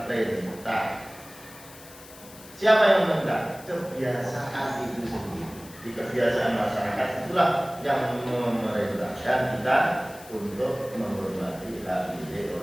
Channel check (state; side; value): noise; left; hiss, 19 dB below the sound